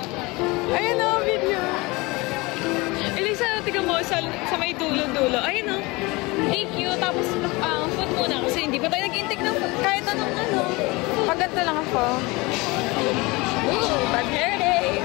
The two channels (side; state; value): right; quieter; 24.1 dB